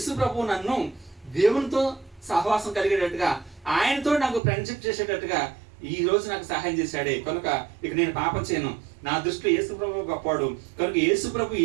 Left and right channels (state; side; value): drops out; left; at 4.4 s